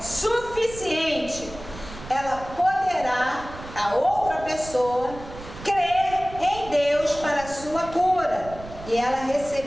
suficiente, ela poderá, a outra pessoa, crer em Deus para a sua cura. E ela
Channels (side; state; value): right; noise; rumble, 14 dB below the sound